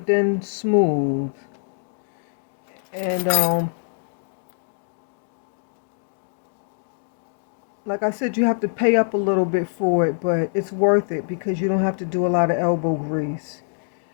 then smooth. And like I said, you have to pay up a little bit for it, but it's worth it because you don't have to do a lot of elbow grease.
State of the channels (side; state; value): right; silent; digital silence